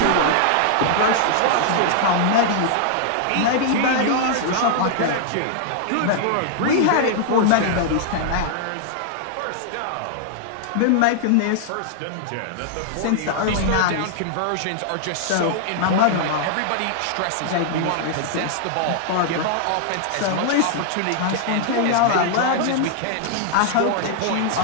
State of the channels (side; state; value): both; different; correlation -0.01